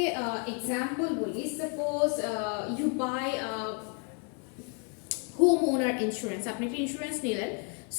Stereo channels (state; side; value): quieter; right; 38.1 dB